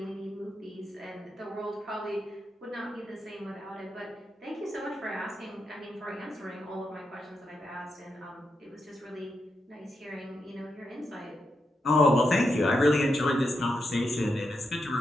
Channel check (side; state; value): both; normal; correlation 0.84